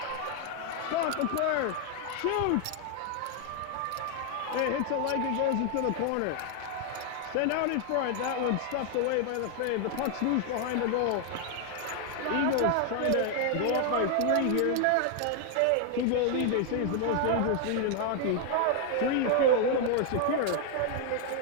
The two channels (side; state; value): both; different; correlation 0.00